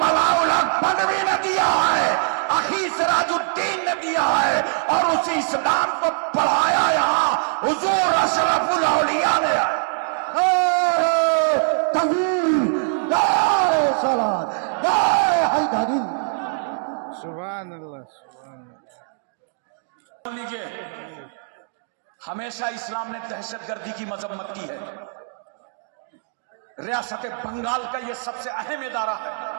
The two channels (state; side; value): silent; left; digital silence